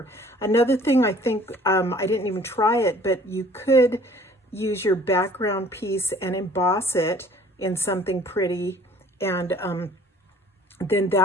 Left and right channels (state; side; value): normal; both; correlation 0.53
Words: Another thing, I think, I didn't even try it, but you could use your background piece and emboss it in something pretty, and then